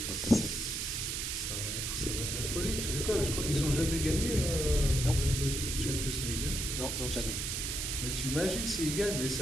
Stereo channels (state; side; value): noise; right; hiss, 2 dB below the sound